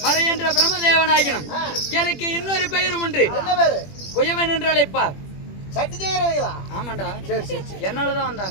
மறை என்ற பிரம்மதேவனாகினும் எனக்கு இன்னொரு பெயரும் உண்டு. என்ன பேரு? குயவன் என்று அழைப்பார். சட்டி செய்யறவங்களா? ஆமாண்டா. சரி சரி என்னாலதான்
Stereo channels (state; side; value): late; right; 21 ms